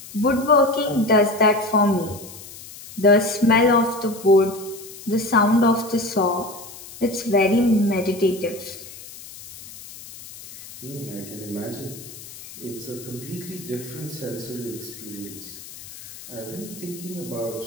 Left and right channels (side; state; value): left; noise; hiss, 16 dB below the sound